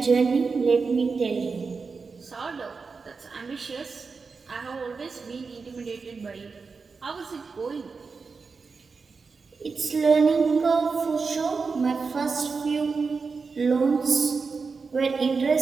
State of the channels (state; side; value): quieter; left; 4.7 dB